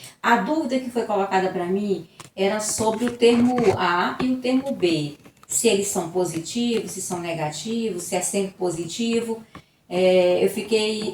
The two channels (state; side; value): identical; both; correlation 1.00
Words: A dúvida que foi colocada para mim era sobre o termo A e o termo B. Se eles são positivos, se são negativos, se é sempre positivo. Eu fiquei